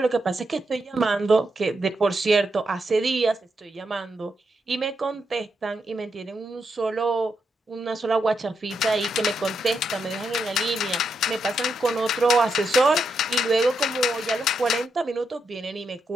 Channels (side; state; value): both; normal; correlation 0.83